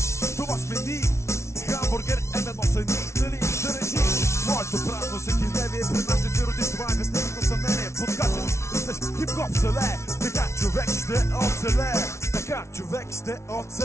това сме ни. Хамбургер М1 са ни, нали да режи. Моето празно всекидневие пред нашите си родиш. Това е безневно съмнение. Подкачаш, растеш хип-хоп селе. Така човек ще оцелее. Така човек ще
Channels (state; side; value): late; right; 0.13 ms